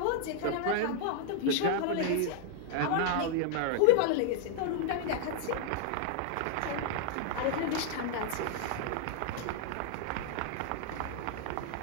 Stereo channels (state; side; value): different; both; correlation -0.01